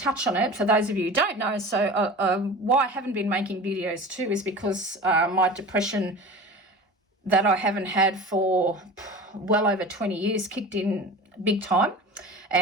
touch on it for those of you who don't know. So why I haven't been making videos too is because my depression that I haven't had for well over 20 years kicked in big time,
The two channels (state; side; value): normal; both; correlation 0.36